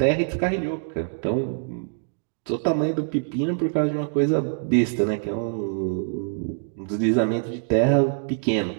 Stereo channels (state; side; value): silent; left; digital silence